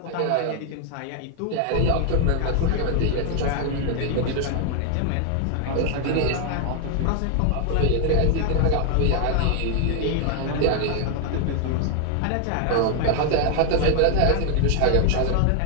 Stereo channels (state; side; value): different; both; correlation 0.00